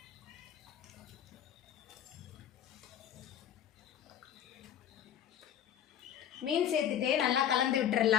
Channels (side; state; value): right; quieter; 9.8 dB